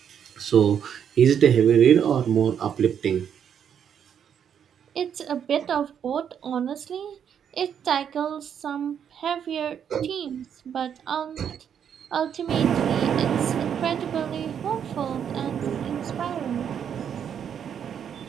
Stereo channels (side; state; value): left; quieter; 8.3 dB